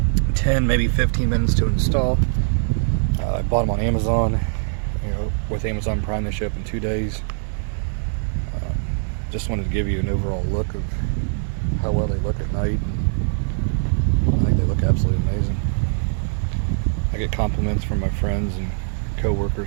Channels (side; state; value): left; silent; digital silence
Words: 10, maybe 15 minutes to install. I bought them on Amazon. With Amazon Prime, they ship in 2 days. Just wanted to give you an overall look of how well they look at night. I think they look absolutely amazing. I get compliments from my friends and